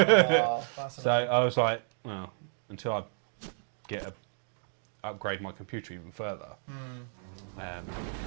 So I was like, well, until I upgrade my computer even further, I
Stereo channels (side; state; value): left; silent; 57 dB below the other